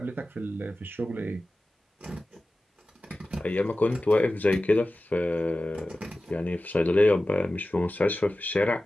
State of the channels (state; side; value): normal; both; correlation 0.95